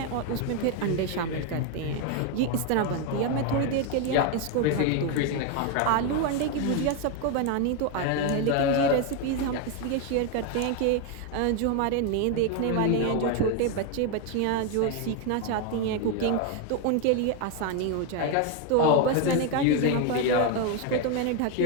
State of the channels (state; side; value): different; both; correlation 0.01